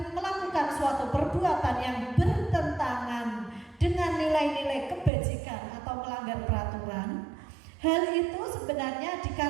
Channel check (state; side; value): drops out; left; at 5.1 s